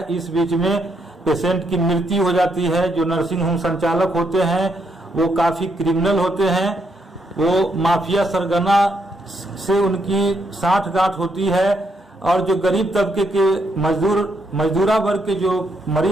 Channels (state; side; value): normal; both; correlation 0.77